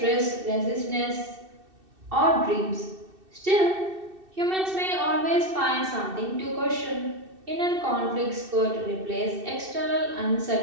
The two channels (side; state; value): left; late; 2.6 ms